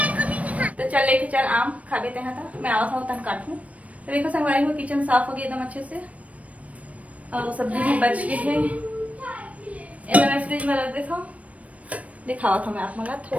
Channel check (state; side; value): late; left; 0.067 ms